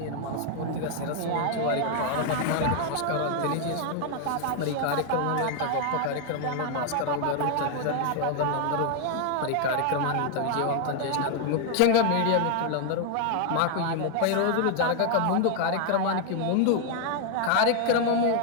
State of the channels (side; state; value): both; different; correlation 0.00